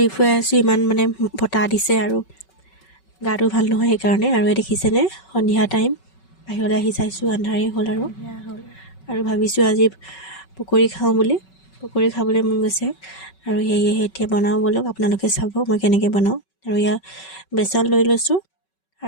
ফুৱাই আছোঁ, ইমান মানে বতাহ দিছে আৰু গাটো ভাল নহয় সেইকাৰণে। আৰু দেখিছেনে সন্ধিয়া টাইম বাহিৰলৈ আহি চাইছোঁ, আন্ধাৰেই হ'ল আৰু ভাবিছোঁ আজি পকৰি খাওঁ বুলি। পকৰি খাবলৈ মন গৈছে আৰু সেয়েহে এতিয়া বনাওঁ বলক, আপোনালোকে চাব মই কেনেকৈ বনাওঁ। আৰু ইয়াৰ বেচন লৈ লৈছোঁ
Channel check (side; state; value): right; late; 5.3 ms